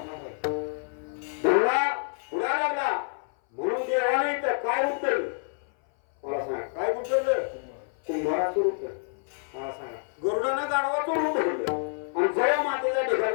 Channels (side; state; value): right; silent; 58 dB below the other